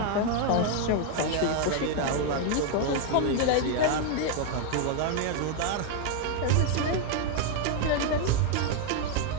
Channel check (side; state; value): both; different; correlation 0.01